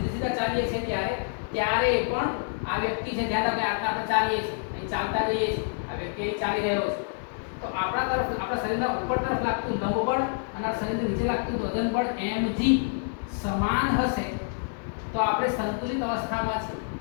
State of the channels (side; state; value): right; silent; digital silence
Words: સીધા ચાલીએ છીએ ત્યારે પણ આ વ્યક્તિ છે, ધ્યાન રાખો, આટલા આપણે ચાલીએ છીએ, અહીં ચાલતા જઈએ છીએ, આ વ્યક્તિ અહીં ચાલી રહ્યો છે, તો આપણા તરફ આપણા શરીરના ઉપર તરફ લાગતું લંબ બળ અને આ શરીરની નીચે લાગતું વજન બળ mg સમાન હશે તો આપણે સંતુલિત અવસ્થામાં છે.